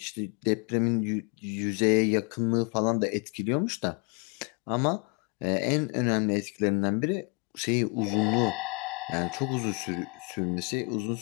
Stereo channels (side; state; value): right; quieter; 33.0 dB